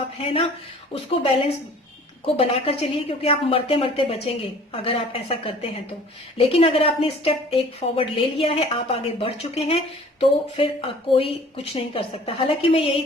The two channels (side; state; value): both; normal; correlation 0.49